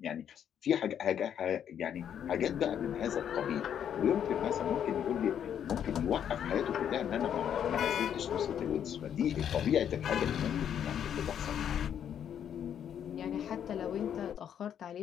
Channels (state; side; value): quieter; right; 9.1 dB